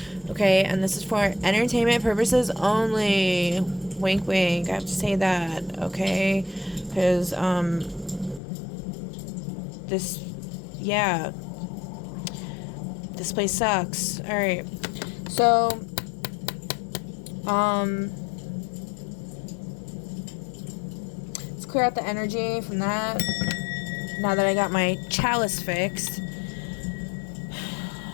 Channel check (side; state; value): right; drops out; at 8.4 s